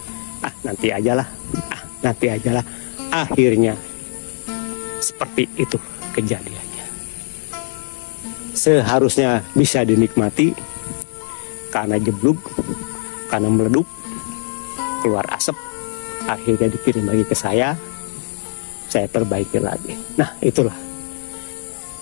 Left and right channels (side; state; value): right; silent; 55 dB below the other